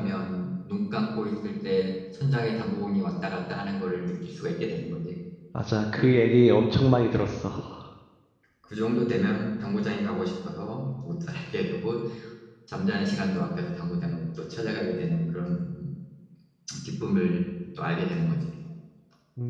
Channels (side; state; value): both; identical; correlation 1.00